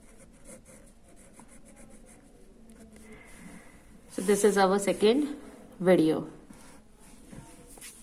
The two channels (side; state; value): both; identical; correlation 1.00